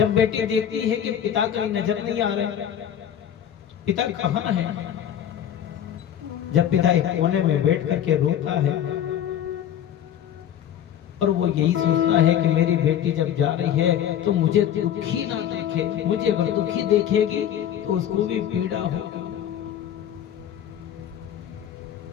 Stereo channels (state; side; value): quieter; right; 10.1 dB